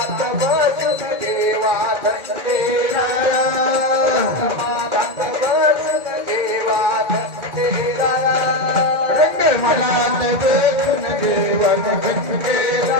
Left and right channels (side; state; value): left; late; 2.2 ms